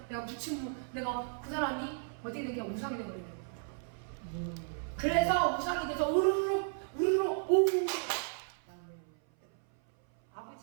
내가 붙이면 내가 그 사람이 어떻게 되냐 우상이 되거든요. 그래서 우상이 돼서 우르르 오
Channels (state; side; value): silent; left; 55 dB below the other